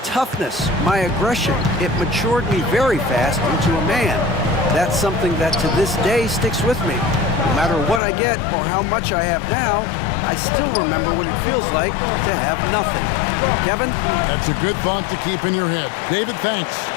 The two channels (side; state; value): right; drops out; at 8.0 s